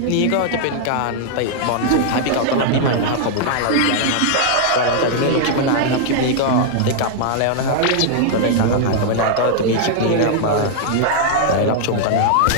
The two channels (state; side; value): different; both; correlation -0.01